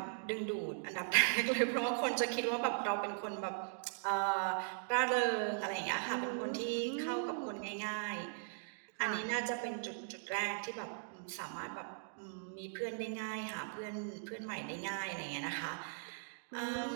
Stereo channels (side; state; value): left; silent; digital silence